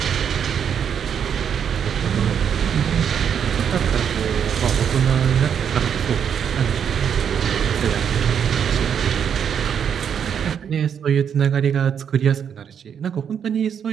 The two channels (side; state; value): left; quieter; 8.0 dB